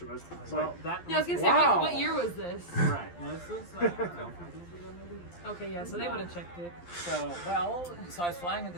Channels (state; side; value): late; right; 12 ms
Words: was well, that Yeah, I was gonna say, Wow. what year was this? right. No, this was I don't know, 5 years ago maybe. Okay, yeah, so they would have checked it. So, so I was flying into